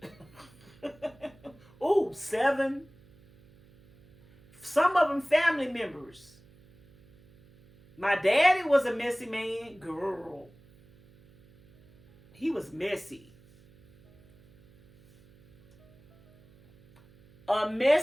Ooh, 7. Some of them family members. My daddy was a messy man. Girl. He was messy. A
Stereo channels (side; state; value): right; noise; hum, 27 dB below the sound